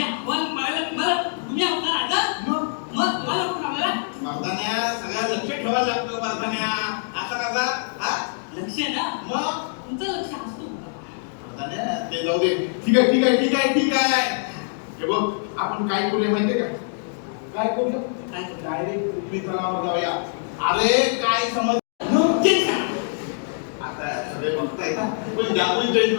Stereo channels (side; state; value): right; silent; digital silence